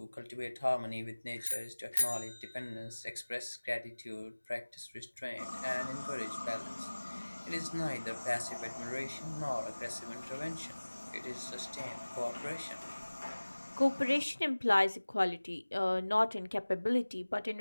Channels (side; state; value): both; inverted; correlation -1.00